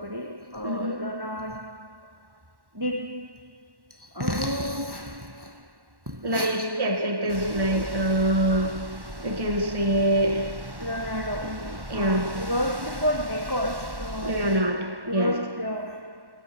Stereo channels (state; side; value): late; left; 1.1 ms